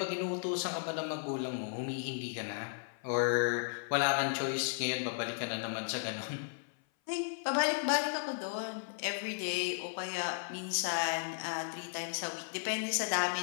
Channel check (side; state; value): right; silent; 54 dB below the other